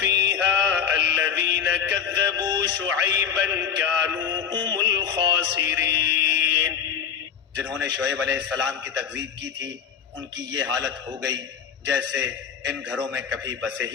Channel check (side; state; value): right; quieter; 7.8 dB